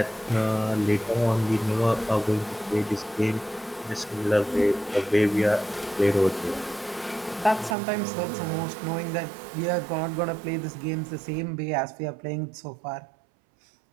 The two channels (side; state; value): left; drops out; at 7.8 s